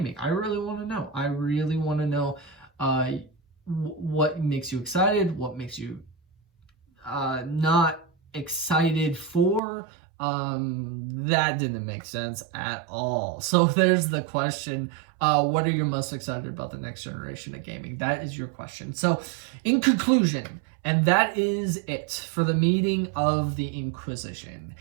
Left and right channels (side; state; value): left; drops out; at 9.6 s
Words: I really want to know. I really want to know what makes you excited, what makes you not excited for. That didn't make sense at all. So there's the question. What are you most excited about the next generation of gaming? That is your question. So in conclusion, and that is it for the meeting of the Inquisition.